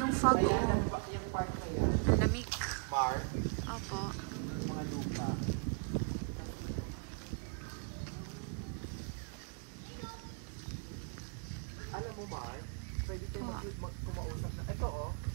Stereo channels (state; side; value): quieter; left; 38.8 dB